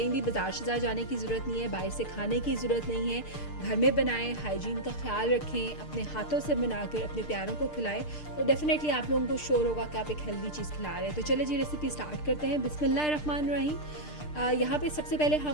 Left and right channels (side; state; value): right; late; 6.7 ms